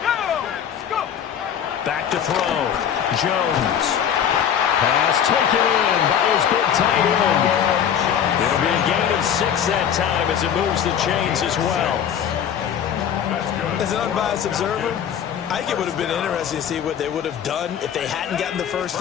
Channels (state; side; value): quieter; right; 8.8 dB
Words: Back to throw. Jones. Pass taken in by his big tight end. It'll be a gain of 6 that time as it moves the chains as well. As an unbiased observer, I think it would have been interesting to see what they would have done if they hadn't gotten the first